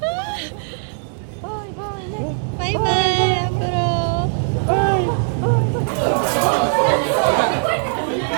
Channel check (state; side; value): silent; left; digital silence